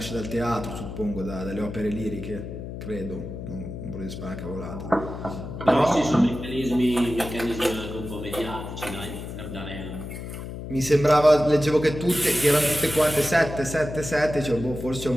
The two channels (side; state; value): left; noise; hum, 9 dB below the sound